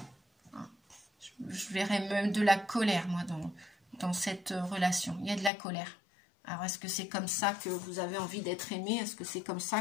Je verrais même de la colère, moi, dans cette relation. Il y a de la colère. Alors, est-ce que c'est comme ça que vous avez envie d'être aimé? Est-ce que c'est comme ça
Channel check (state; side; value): drops out; right; at 5.5 s